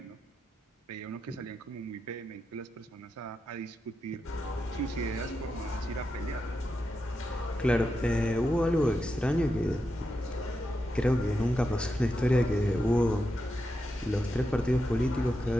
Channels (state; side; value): normal; both; correlation 0.87